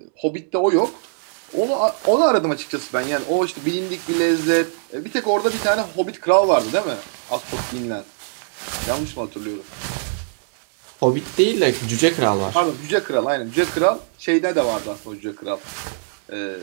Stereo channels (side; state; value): left; silent; digital silence